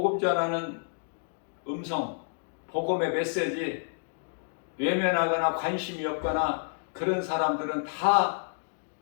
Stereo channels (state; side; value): silent; right; digital silence